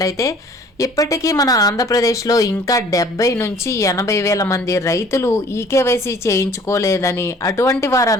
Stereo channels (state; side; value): normal; both; correlation 0.53